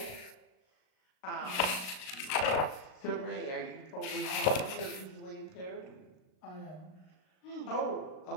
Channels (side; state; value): right; late; 38 ms